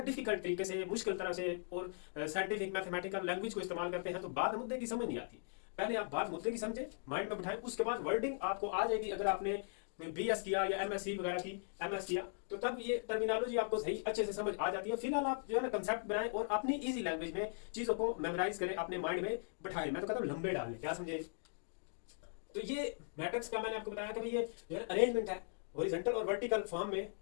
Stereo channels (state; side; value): silent; right; digital silence